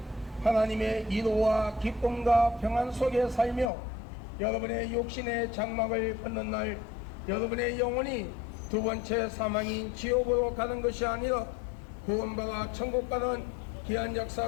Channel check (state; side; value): drops out; right; at 3.7 s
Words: 하나님의 이로와 기쁨과 평안 속에 살며 여러분의 육신의 장막을 벗는 날 여러분의 영혼이 두 번째 사망인 지옥으로 가는 것이 아니라 구원받아 천국 가는 귀한